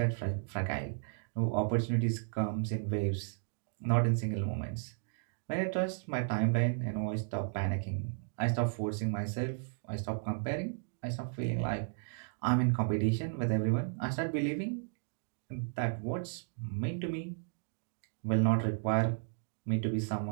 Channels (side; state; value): left; silent; digital silence